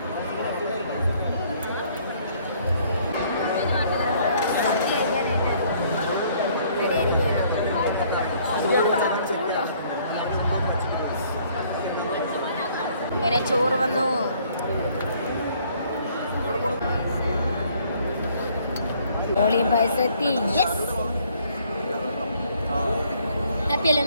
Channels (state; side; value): inverted; both; correlation -0.62